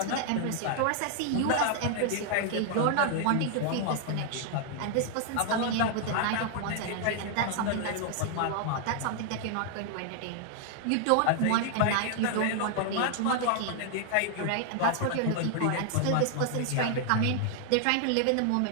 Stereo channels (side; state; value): both; different; correlation 0.00